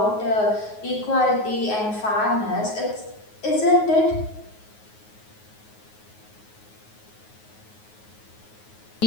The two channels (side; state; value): right; late; 9.4 ms